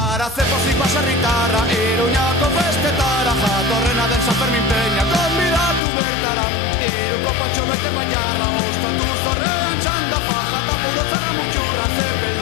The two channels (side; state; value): right; drops out; at 5.8 s